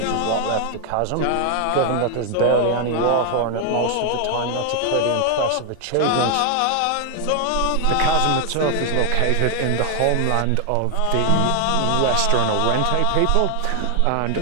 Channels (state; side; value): different; both; correlation 0.00